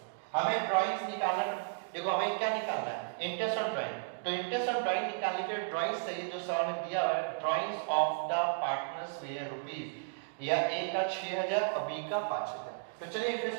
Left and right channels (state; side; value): silent; left; digital silence